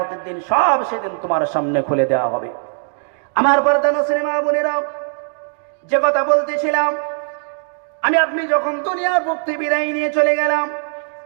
দিন সব সেদিন তোমার সামনে খুলে দেওয়া হবে। আমার পর্দানশীল মা বোনেরা, যে কথা বলতেছিলাম, আমি আপনি যখন দুনিয়ার মুক্তি বিদায় নিয়ে চলে গেলাম,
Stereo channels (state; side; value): silent; left; digital silence